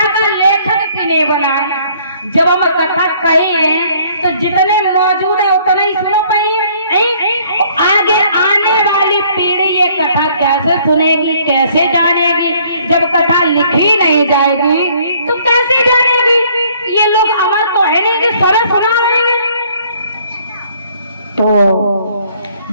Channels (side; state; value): both; inverted; correlation -0.61